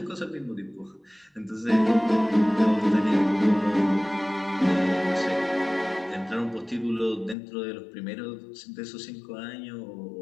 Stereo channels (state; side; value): drops out; right; at 7.4 s